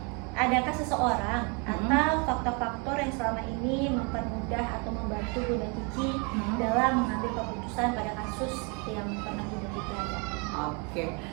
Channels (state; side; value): quieter; left; 33.0 dB